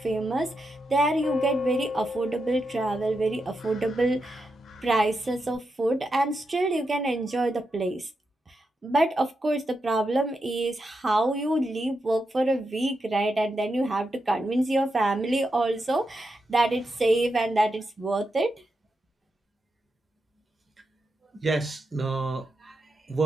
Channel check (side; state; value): both; normal; correlation 0.86